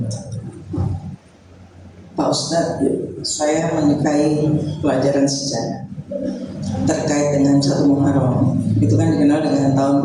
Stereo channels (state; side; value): identical; both; correlation 1.00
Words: Pak Ustadz, saya menyukai pelajaran sejarah terkait dengan 1 Muharram. Itu kan dikenal dengan tahun